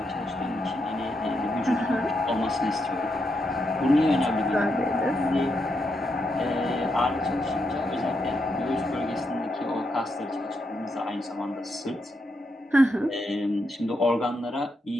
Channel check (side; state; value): both; normal; correlation 0.82